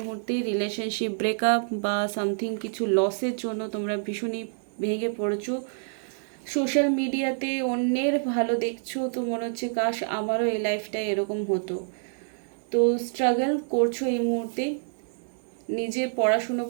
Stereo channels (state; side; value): silent; left; 60 dB below the other